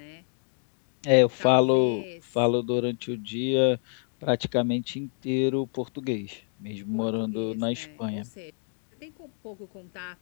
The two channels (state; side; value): silent; right; 59 dB below the other